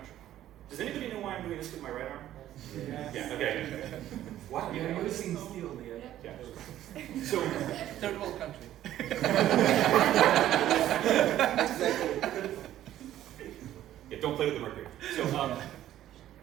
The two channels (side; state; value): left; quieter; 12.7 dB